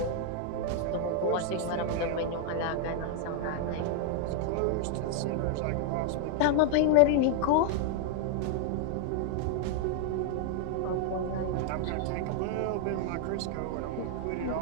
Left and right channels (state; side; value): different; both; correlation 0.00